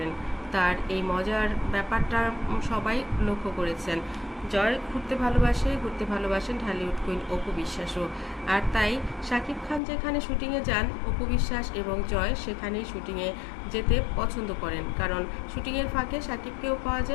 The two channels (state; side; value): drops out; right; at 9.8 s